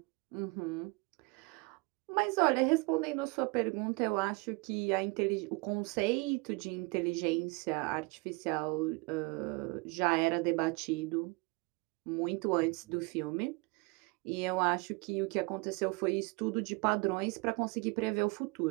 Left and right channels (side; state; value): left; quieter; 27.9 dB